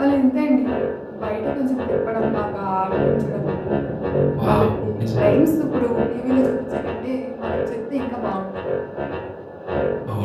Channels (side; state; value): both; identical; correlation 1.00